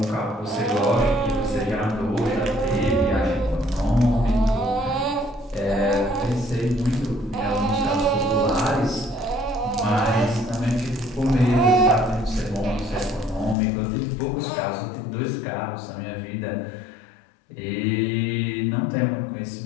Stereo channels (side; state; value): right; drops out; at 13.6 s